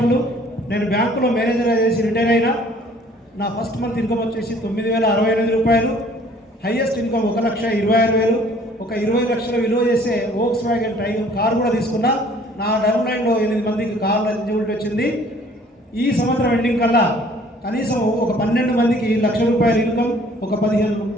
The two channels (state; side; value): normal; both; correlation 0.56